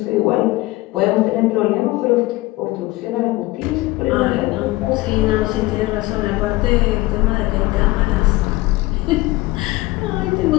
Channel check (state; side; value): quieter; right; 19.7 dB